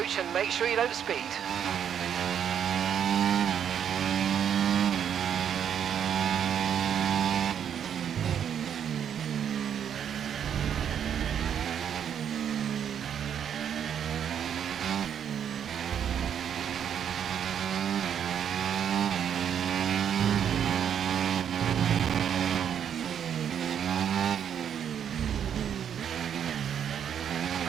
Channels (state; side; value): quieter; left; 8.7 dB